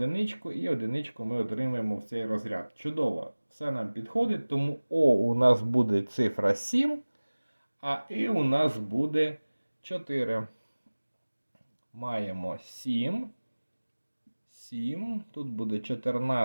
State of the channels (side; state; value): both; inverted; correlation -1.00